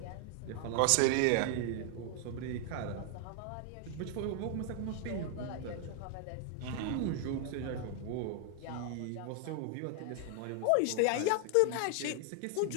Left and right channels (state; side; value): different; both; correlation 0.00